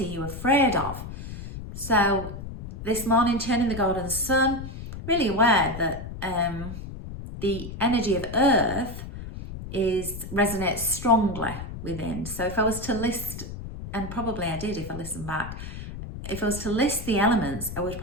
are you afraid of? So this morning, turning the golden sun, really aware that the energy of earth resonates strongly within. So if I was to list, and probably I did if I listened back, if I was to list the elements, I would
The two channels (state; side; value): noise; left; rumble, 10 dB below the sound